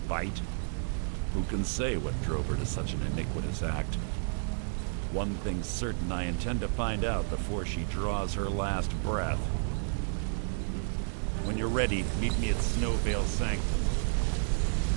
Who can say what drove her to such an iniquitous act? One thing's certain, I intend to find out before she draws her last breath. When you're ready, meet me at Snowvale Sanctum.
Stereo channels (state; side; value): silent; left; digital silence